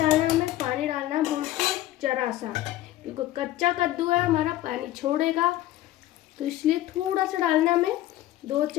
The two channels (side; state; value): right; quieter; 14.7 dB